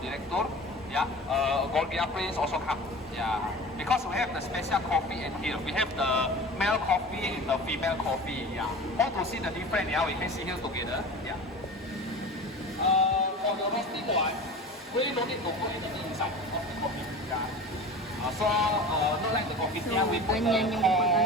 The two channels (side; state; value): both; normal; correlation 0.35